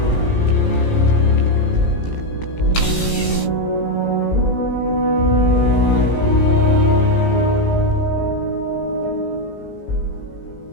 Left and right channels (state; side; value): late; right; 17 ms